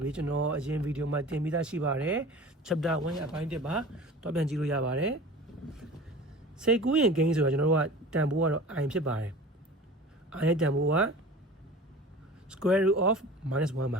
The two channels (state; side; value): normal; both; correlation 0.39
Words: တွေကျွန်တော်အရင်ဗီဒီယိုမှာတင်ပြီးသားရှိပါတယ် chapter 1ရဲ့အပိုင်း1ပါတော့ပြန်ကြည့်လို့ရပါတယ်စိတ်ကူးရင်ကိန်းဆိုတာကျွန်တော်တို့ကတန်ဖိုးကတော့ i ဖြစ်ပါတယ် i ရဲ့တန်ဖိုးက square root of -1 ပါ